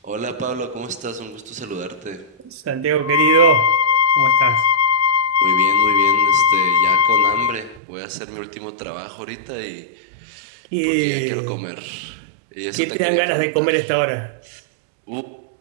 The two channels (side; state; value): left; drops out; at 7.8 s